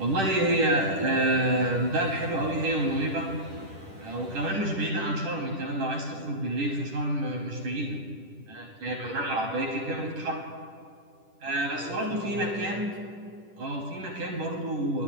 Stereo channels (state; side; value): late; left; 10 ms